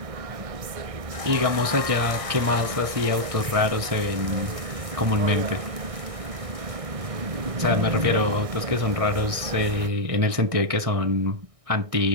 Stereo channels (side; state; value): left; late; 1.6 ms